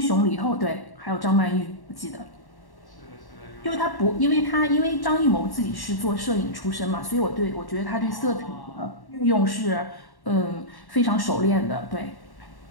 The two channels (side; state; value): right; late; 1.1 ms